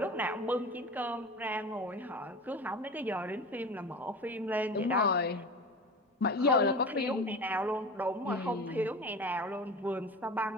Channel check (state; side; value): normal; both; correlation 0.32